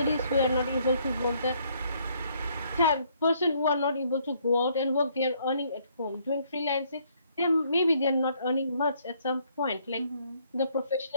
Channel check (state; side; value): inverted; both; correlation -0.67